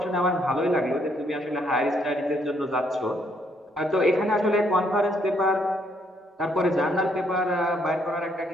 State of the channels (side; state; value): both; normal; correlation 0.71